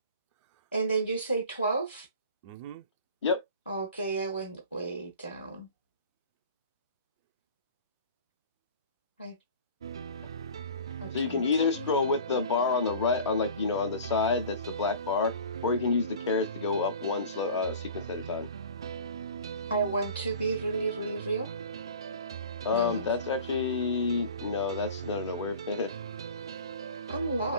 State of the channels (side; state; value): both; inverted; correlation -0.41